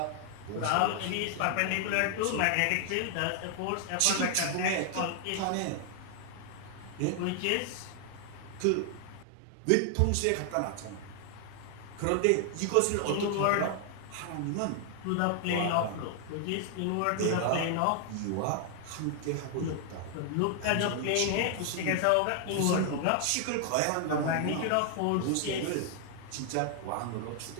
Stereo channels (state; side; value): different; both; correlation 0.00